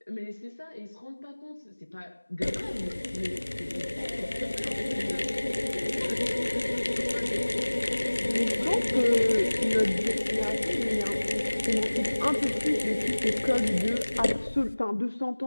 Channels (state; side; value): inverted; both; correlation -1.00